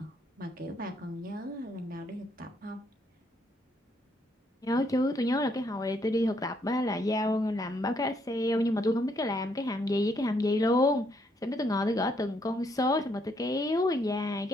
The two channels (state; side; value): normal; both; correlation 0.72